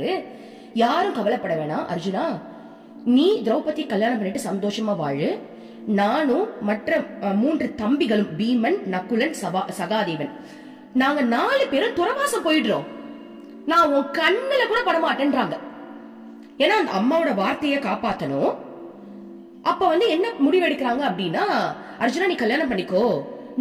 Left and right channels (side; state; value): both; identical; correlation 1.00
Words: யாரும் கவலைப்பட வேணாம் அர்ஜுனா, நீ திரௌபதி கல்யாணம் பண்ணிட்டு சந்தோஷமா வாழு, நானும் மற்ற 3 தம்பிகளும் பீமன், நகுலன், சகாதேவன், நாங்க 4 பேரும் துறவாசம் போயிடுறோம், நான் உன் கண்ணுல கூட படமாட்டேன்றாங்க. ஏன்னா அந்த அம்மாவோட வார்த்தையை காப்பாத்தணும். அப்ப வந்து என்ன முடிவெடுக்கிறாங்க அப்படின்னா, அர்ஜுனா நீ கல்யாணம் பண்ணிக்கோ,